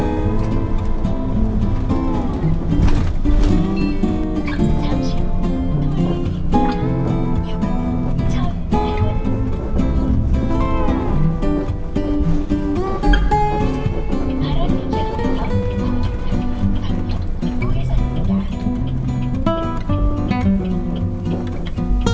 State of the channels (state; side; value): identical; both; correlation 1.00